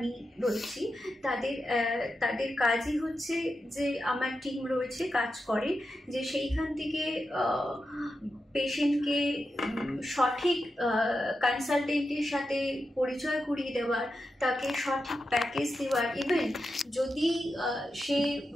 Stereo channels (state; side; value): normal; both; correlation 0.89